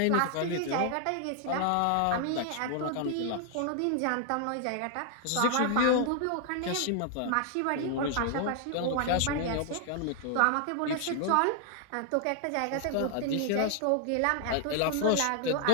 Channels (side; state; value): both; different; correlation 0.00